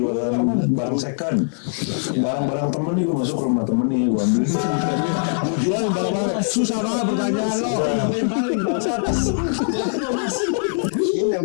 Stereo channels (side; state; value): right; silent; digital silence